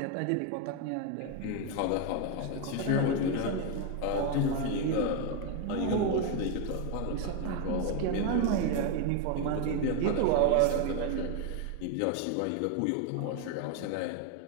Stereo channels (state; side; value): different; both; correlation 0.01